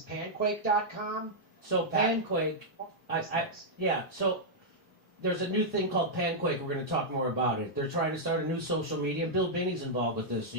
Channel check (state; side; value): normal; both; correlation -0.06